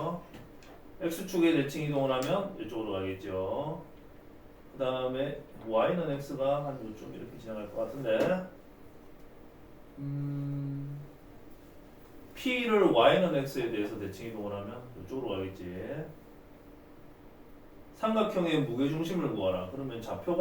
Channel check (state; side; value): identical; both; correlation 1.00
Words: x축에 대칭 이동을 하면 이쪽으로 가겠죠. 그 다음에 y는 x가 한 요쯤 이렇게 지나갈 것 같은데 p를 y는 x에 대해서 대칭 이동을 하면 이쪽으로 가겠지. 삼각형의 무게중심을 구하라. 그러면